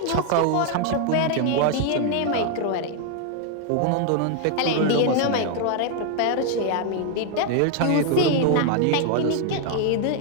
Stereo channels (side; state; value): both; different; correlation 0.00